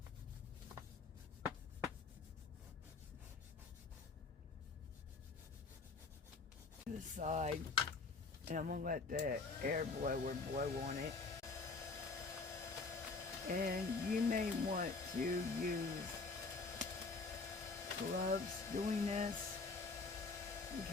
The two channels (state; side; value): quieter; right; 4.1 dB